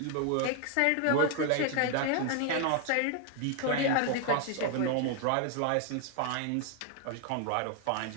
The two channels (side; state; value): both; different; correlation 0.00